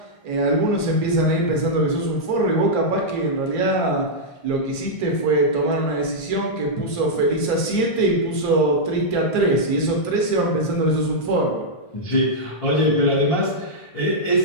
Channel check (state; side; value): late; right; 1.5 ms